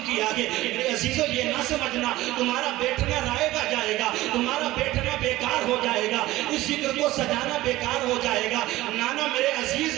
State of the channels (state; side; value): quieter; left; 17.1 dB